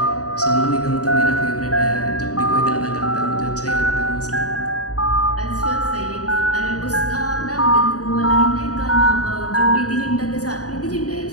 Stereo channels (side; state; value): right; late; 0.67 ms